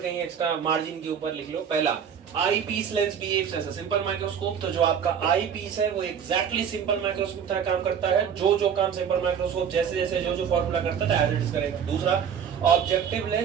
कहीं एक्स्ट्रा मार्जिन के ऊपर लिख लो। पहला, eyepiece lens behaves as a simple microscope, तो जो आपका आई पीस है वो एग्जैक्टली सिंपल माइक्रोस्कोप तरह काम करता है, जो काम सिंपल माइक्रोस्कोप जैसे जैसे जो फॉर्मूला करता है एज इट इज करेगा। दूसरा, ऑब्जेक्टिव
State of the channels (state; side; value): quieter; left; 7.8 dB